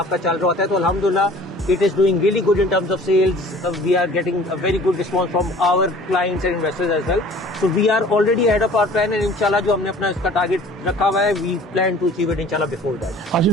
चल रहा होता है, तो अल्हम्दुलिल्लाह it is doing really good in terms of sales. We are getting a very good response from our clients and investors as well. So we are already ahead of our plan and inshallah जो हमने अपना इसका target रखा हुआ है, we plan to achieve it inshallah before that.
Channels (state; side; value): normal; both; correlation 0.48